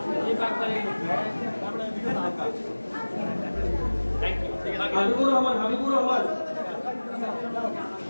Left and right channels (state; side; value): inverted; both; correlation -1.00